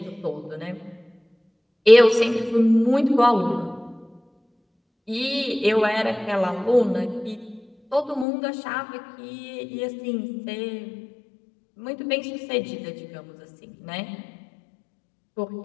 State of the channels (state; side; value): drops out; right; at 8.2 s